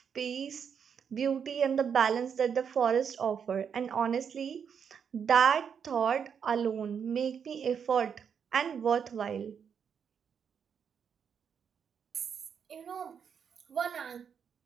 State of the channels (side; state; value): left; quieter; 7.2 dB